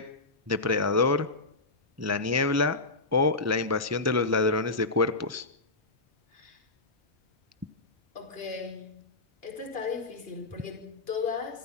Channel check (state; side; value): quieter; right; 3.3 dB